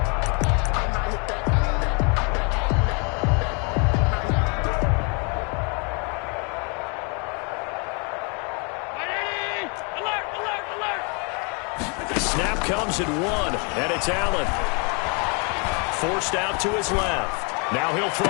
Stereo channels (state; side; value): quieter; right; 34.7 dB